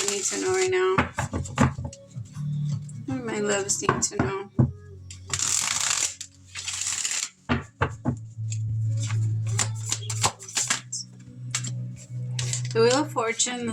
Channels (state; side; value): identical; both; correlation 1.00